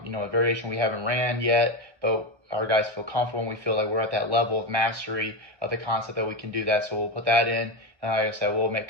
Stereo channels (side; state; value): left; late; 1.1 ms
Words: variation we haven't ran yet, but our guys feel comfortable and we feel like we're at that level of mastery of the concept that we can do that. So we'll put that in, and like I said, we'll make